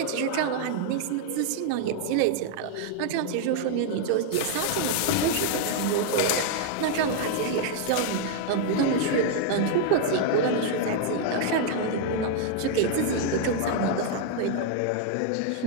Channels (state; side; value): different; both; correlation 0.00